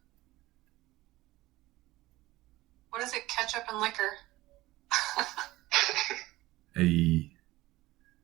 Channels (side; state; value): left; quieter; 18.3 dB